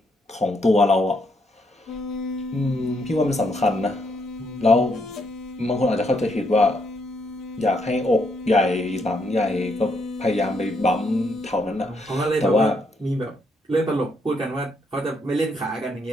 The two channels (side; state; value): both; normal; correlation 0.75